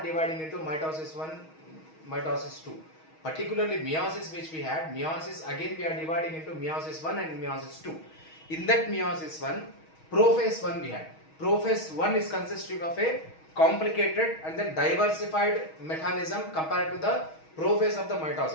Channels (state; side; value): late; right; 6.3 ms